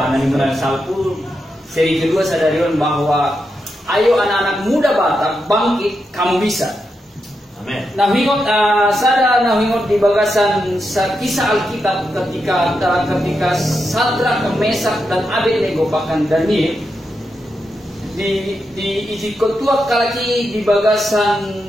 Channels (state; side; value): normal; both; correlation 0.86